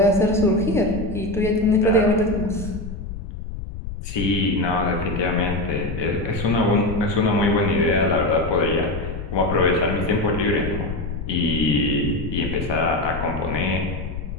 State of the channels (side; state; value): left; noise; rumble, 8 dB below the sound